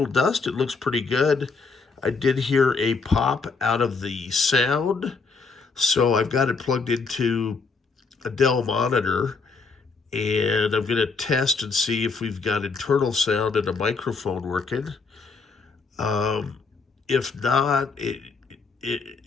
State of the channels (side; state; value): right; quieter; 4.6 dB